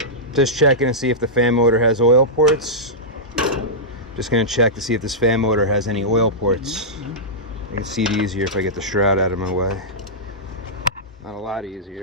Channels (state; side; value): normal; both; correlation -0.13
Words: Just checking to see if the fan motor has oil ports. Just going to check to see if this fan motor has any oil ports. I can see it easier if I get the shroud out of my way. Not a lot